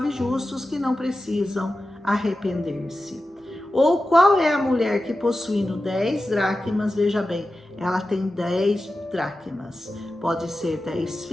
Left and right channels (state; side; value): normal; both; correlation 0.93